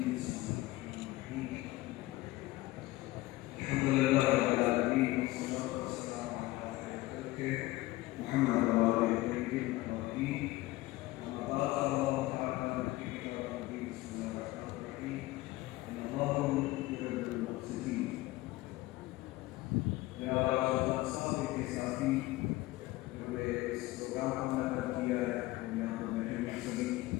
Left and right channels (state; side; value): quieter; right; 18.6 dB